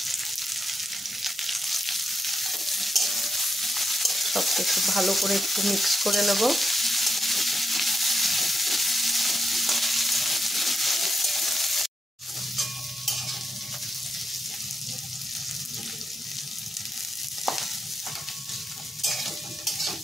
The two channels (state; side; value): normal; both; correlation 0.83